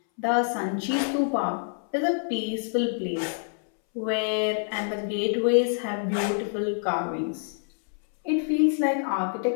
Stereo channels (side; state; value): right; silent; 61 dB below the other